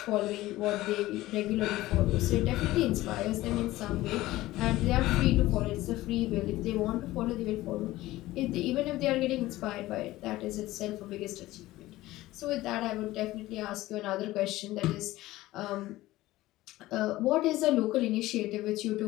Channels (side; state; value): right; quieter; 17.1 dB